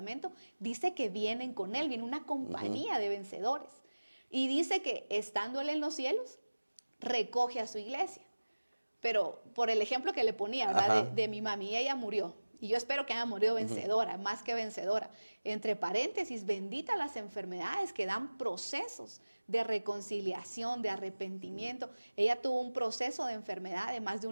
dice que vienen con Él, viene una compañía de vencedores. Y dice que estando Él en los cielos, recoge a su iglesia. Pero por el ejemplo que le ponía, ¿verdad? De mi mami, ella murió. Y yo espero que haya morido vencedora, más que vencedora. Entre paréntesis, bendita las enfermedades que dan procesos de reconciliación, de arrepentimiento. Ella tuvo un proceso de enfermedad de más de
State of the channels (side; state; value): both; inverted; correlation -1.00